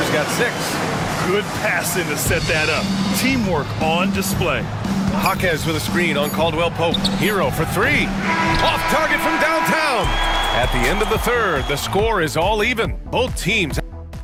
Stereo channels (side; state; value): both; identical; correlation 1.00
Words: got 6. Good passing to set that up. Teamwork on display. Jaquez with a screen on Caldwell Pope. Hero for 3. Off target from downtown. At the end of the third, the score is all even. Both teams.